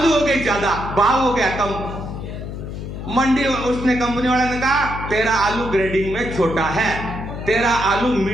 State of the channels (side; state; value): left; noise; hum, 8 dB below the sound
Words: हो गए ज्यादा, भाव हो गया कम। मंडी उसने कंपनी वाले ने कहा तेरा आलू ग्रेडिंग में छोटा है, तेरा आलू